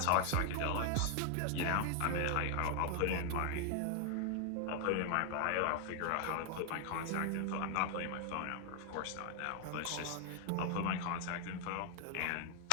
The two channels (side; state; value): both; different; correlation 0.00